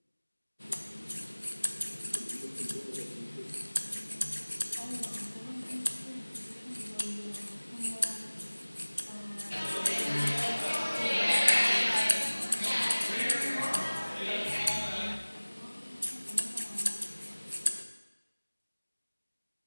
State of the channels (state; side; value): inverted; both; correlation -1.00